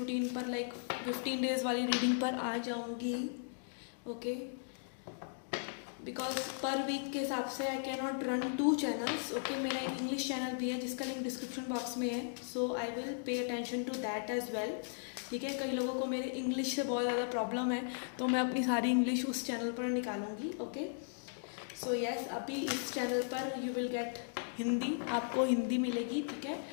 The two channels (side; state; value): right; silent; digital silence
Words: पर 15 डेज वाली रीडिंग पर आ जाऊंगी, ओके। बिकॉज पर वीक के हिसाब से I can not run 2 channels, okay. मेरा एक इंग्लिश चैनल भी है जिसका लिंक डिस्क्रिप्शन बॉक्स में है, so I will pay attention to that as well, ठीक है। कई लोगों को मेरे इंग्लिश से बहुत ज़्यादा प्रॉब्लम है, तो मैं अपनी सारी इंग्लिश उस चैनल पर निकालूंगी, ओके। सो यस, अभी इस चैनल पर यू विल गेट हिंदी, आपको हिंदी मिलेगी, ठीक है।